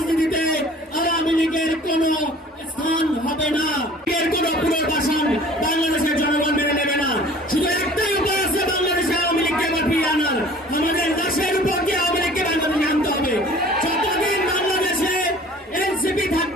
আওয়ামী লীগের কোন স্থান হবে না, এর কোন পুনর্বাসন বাংলাদেশের জনগণ মেনে নেবে না। শুধু একটাই উপায় আছে বাংলাদেশে আওয়ামী লীগকে আবার ফিরিয়ে আনার, আমাদের দেশের উপর দিয়ে আওয়ামী লীগকে বাংলাদেশে আনতে হবে। যতদিন বাংলাদেশে এনসিপি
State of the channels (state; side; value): normal; both; correlation 0.48